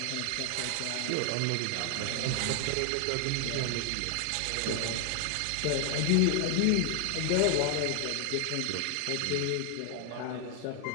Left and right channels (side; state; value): both; different; correlation 0.00